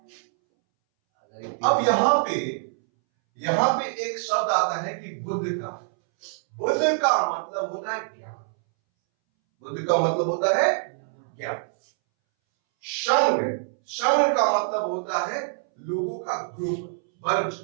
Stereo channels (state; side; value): silent; left; 62 dB below the other